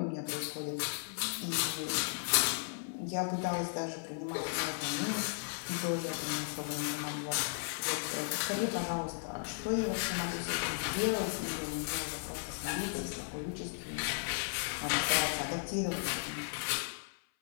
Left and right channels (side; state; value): right; silent; 54 dB below the other